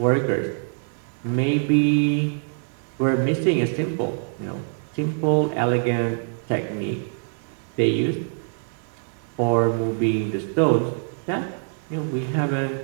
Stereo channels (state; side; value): silent; left; 62 dB below the other